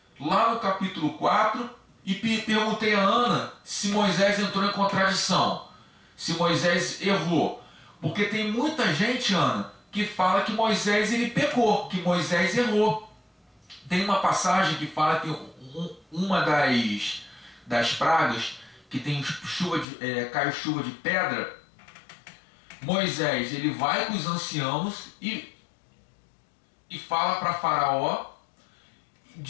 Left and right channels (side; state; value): right; drops out; at 19.9 s